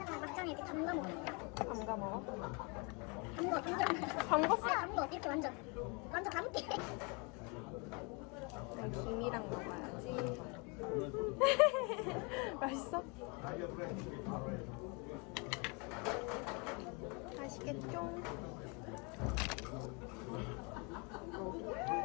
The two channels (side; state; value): right; quieter; 31.9 dB